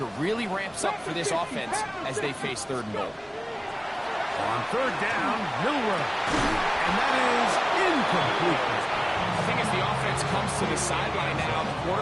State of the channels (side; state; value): both; identical; correlation 1.00